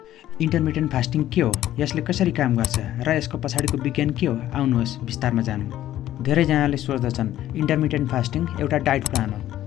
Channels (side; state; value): right; quieter; 13.1 dB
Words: इन्टरमिटेन्ट फास्टिङ के हो, यसले कसरी काम गर्छ र यसको पछाडिको विज्ञान के हो, आउनुहोस् विस्तारमा जानौँ। धेरैजनाले सोच्दछन् इन्टरमिटेन्ट फास्टिङ एउटा डाइट प्लान हो,